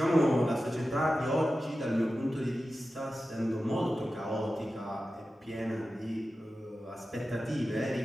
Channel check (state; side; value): normal; both; correlation 0.93